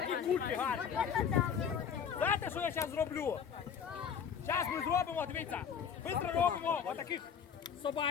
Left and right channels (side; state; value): right; quieter; 7.5 dB